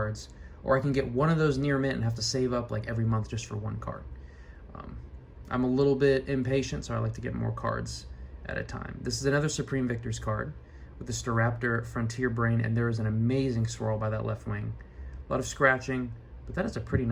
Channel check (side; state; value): both; identical; correlation 1.00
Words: Or I can get one of those near mint and have to save up like every month just for one card. I'm a little bit impatient, so I like to get more cards at a time. This is another Supreme Victor's card with the Staraptor Frontier Brain, and there is an amazing swirl by that left wing. A lot of scratching, but that is a pretty